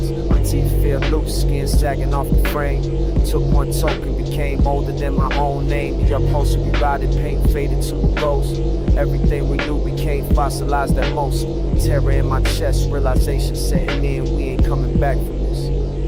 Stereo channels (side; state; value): both; identical; correlation 1.00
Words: My teeth feel loose, skin sagging off the frame. Took one token, became older than my own name. The upholstery rotted, paint faded to a ghost. Everything we knew became fossilized at most. Terror in my chest, realization setting in. We ain't coming back from this.